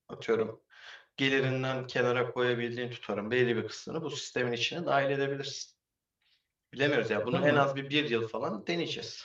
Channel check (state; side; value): identical; both; correlation 1.00